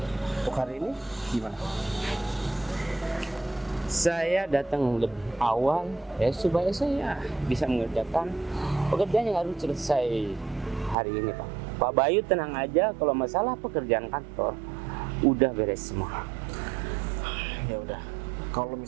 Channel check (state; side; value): drops out; left; at 11.0 s